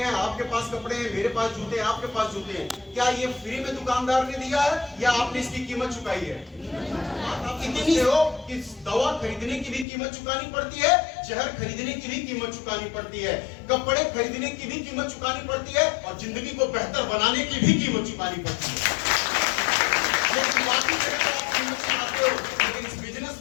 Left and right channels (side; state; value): right; drops out; at 9.9 s